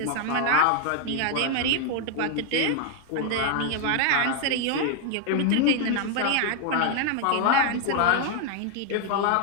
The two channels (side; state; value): both; different; correlation 0.00